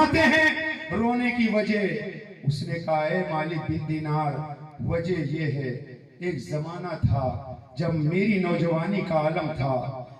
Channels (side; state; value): both; identical; correlation 1.00